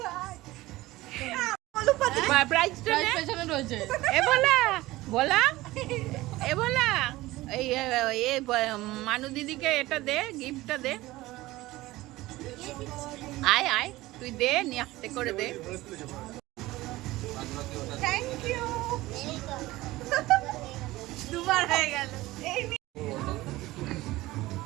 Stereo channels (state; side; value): quieter; left; 18.4 dB